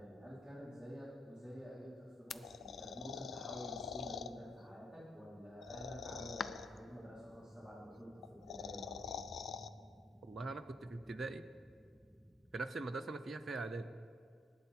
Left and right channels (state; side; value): normal; both; correlation 0.75